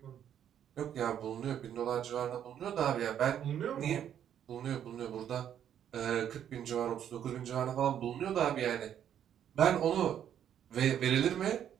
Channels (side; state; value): left; quieter; 9.7 dB